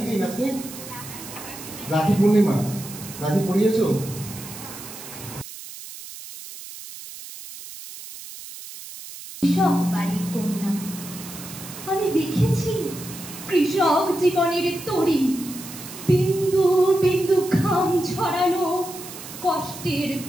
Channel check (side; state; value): right; noise; hiss, 13 dB below the sound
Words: কি দিন আজকে? রাখি পূর্ণিমা। রাখি পরিয়েছো? কৃষক বাড়ির কন্যা আমি দেখেছি কৃষক জীবনের তরি, বিন্দু বিন্দু ঘাম ছড়ানো কষ্টের